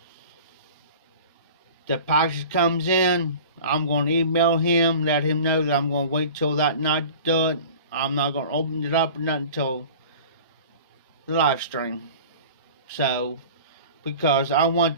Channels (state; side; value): inverted; both; correlation -0.41